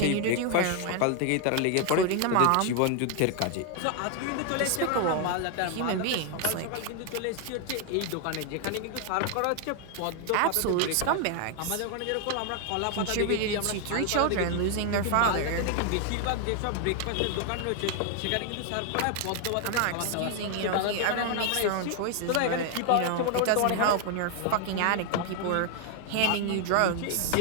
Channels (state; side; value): different; both; correlation 0.00